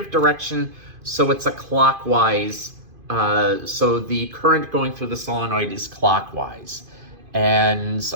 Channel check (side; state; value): left; late; 2.5 ms